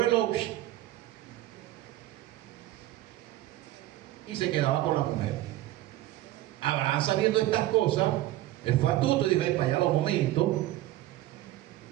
lo... y se quedaba con la mujer. Abraham, sabiendo estas cosas, él fue astuto y dijo: para allá un momento,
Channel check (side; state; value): left; quieter; 15.4 dB